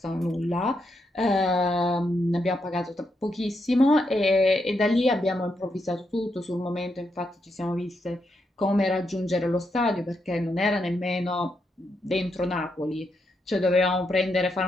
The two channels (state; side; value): normal; both; correlation 0.81